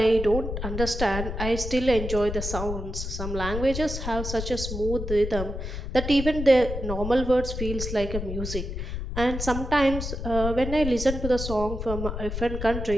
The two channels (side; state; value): left; noise; rumble, 5 dB below the sound